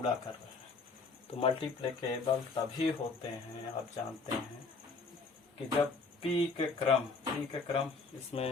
कर रहे हैं। तो मल्टीप्लिकेबल तभी होते हैं, आप जानते हैं, कि जब p के क्रम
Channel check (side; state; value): right; quieter; 4.2 dB